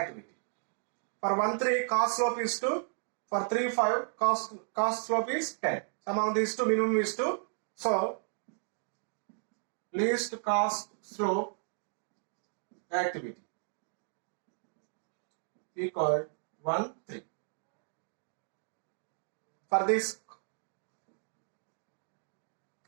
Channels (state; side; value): silent; left; digital silence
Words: For 1, 3, cost slope is 2. For 3, 5, cost slope is 10. Among these two, minimum is 2. So, least cost slope activity equal 1, 3. For this,